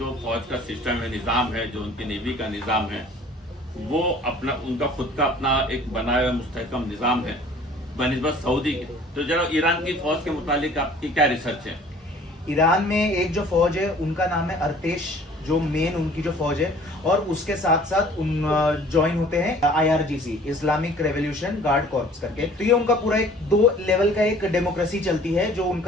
فوج کا سسٹم ہے، نظام ہے، جو ان کی نیوی کا نظام ہے، وہ ان کا خود کا اپنا ایک بنایا ہوا مستحکم نظام ہے بنسبت سعودی کے۔ تو ذرا ایران کی فوج کے متعلق آپ کی کیا ریسرچ ہے؟ ایران میں ایک جو فوج ہے ان کا نام ہے ارتیش، جو مین ان کی جو فوج ہے، اور اس کے ساتھ ساتھ جوائن ہوتے ہیں IRGC، Islamic revolution guard corps کر کے۔ تو یہ ان کا پورا ایک 2 لیول کا ایک ڈیموکریسی چلتی ہے، جو ان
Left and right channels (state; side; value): normal; both; correlation 0.51